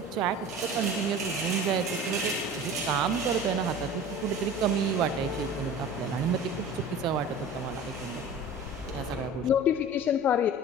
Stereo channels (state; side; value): normal; both; correlation 0.39